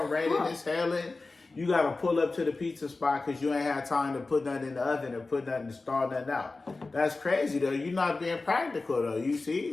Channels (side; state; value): right; quieter; 3.5 dB